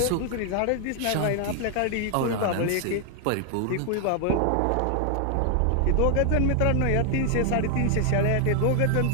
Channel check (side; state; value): both; different; correlation 0.00